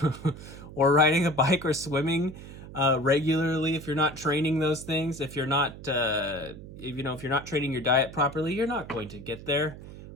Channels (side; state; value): right; noise; hum, 15 dB below the sound